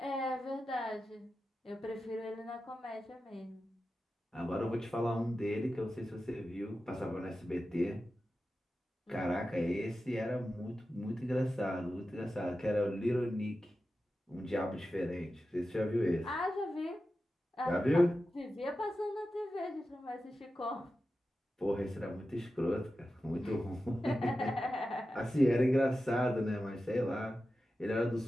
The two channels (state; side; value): normal; both; correlation 0.92